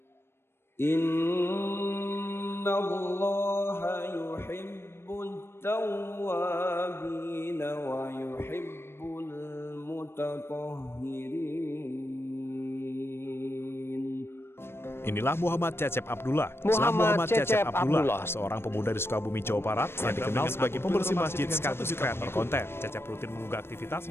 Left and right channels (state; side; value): late; right; 0.12 ms